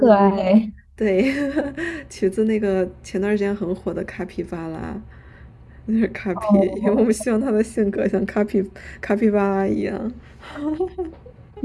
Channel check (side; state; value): both; identical; correlation 1.00